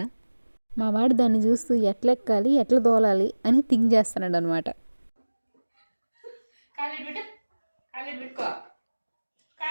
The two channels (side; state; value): both; inverted; correlation -1.00